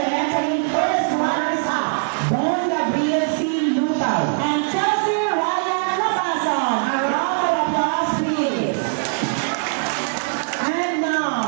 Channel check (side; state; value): left; silent; 65 dB below the other